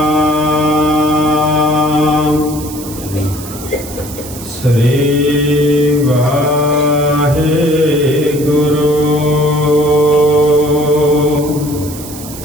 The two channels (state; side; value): noise; right; hiss, 14 dB below the sound